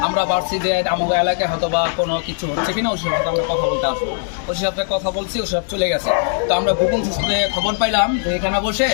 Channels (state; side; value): silent; right; 66 dB below the other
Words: আমরা ভাবছি যে আমাদের এলাকায় হয়তো বা কোনো কিছু হচ্ছে কিনা, ওসি সাহেব আমরা কথা বলতে আসবো। ওসি সাহেবকে কথা বলছি, ওসি সাহেব চলে গেছে। তো আমরা গোপন সূত্রে খবর পাইলাম যে এখানে বসে